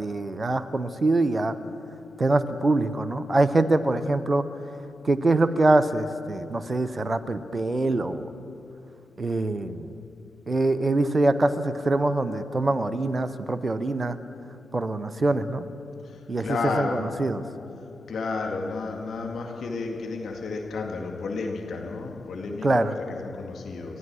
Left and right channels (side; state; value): both; normal; correlation 0.91